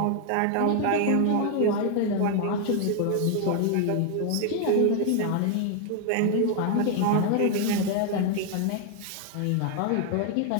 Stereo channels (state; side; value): different; both; correlation 0.00